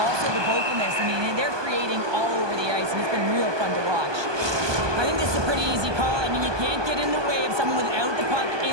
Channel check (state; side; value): late; left; 1.2 ms